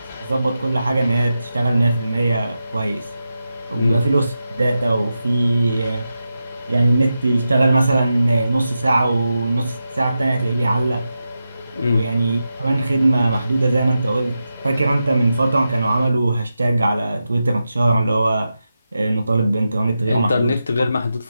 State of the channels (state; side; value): inverted; both; correlation -0.90